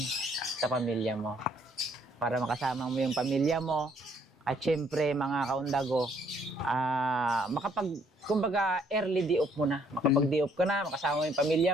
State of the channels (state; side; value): normal; both; correlation 0.66